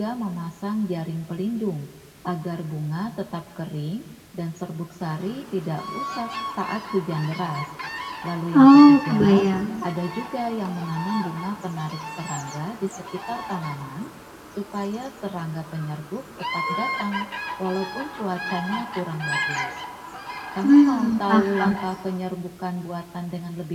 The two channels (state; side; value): identical; both; correlation 1.00